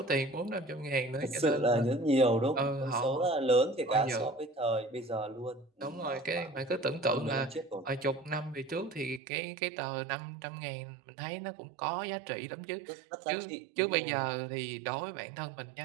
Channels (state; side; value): drops out; left; at 9.2 s